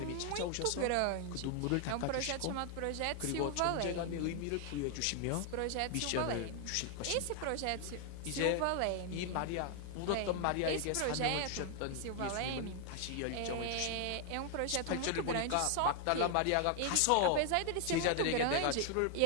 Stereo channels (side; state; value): both; different; correlation 0.00